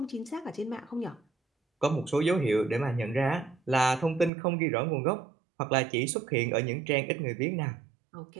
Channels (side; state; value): left; drops out; at 4.3 s